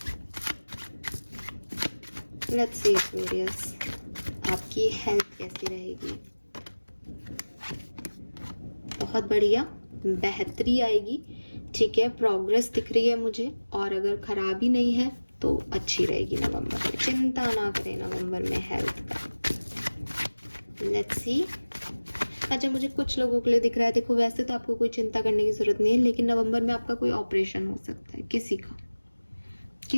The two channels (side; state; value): both; inverted; correlation -1.00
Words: लेट्स सी एक्वेरियस, आपकी हेल्थ कैसी रहेगी। बहुत बढ़िया, बेहतरी आएगी, ठीक है, प्रोग्रेस दिख रही है मुझे। और अगर खराबी नहीं है तो अच्छी रहेगी नवंबर में, चिंता ना करें नवंबर में हेल्थ का। Let's see. अच्छा, मुझे कुछ लोगों के लिए दिख रहा है, देखो वैसे तो आपको कोई चिंता करने की जरूरत नहीं है, लेकिन नवंबर में आपका कोई ऑपरेशन हो सकता है किसी का,